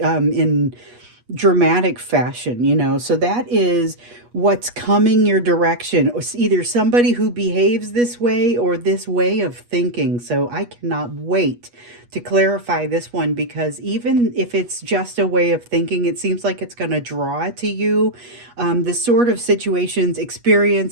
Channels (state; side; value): late; left; 8.3 ms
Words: dramatic fashion, you know. So that is what's coming your direction. It's either somebody who behaves this way or this way of thinking. So I cannot wait to clarify this one, because even if it's just a way of thinking, it seems like it's going to draw to you the sort of situations,